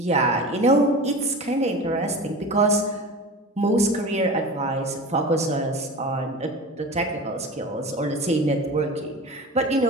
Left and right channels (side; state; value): both; normal; correlation 0.32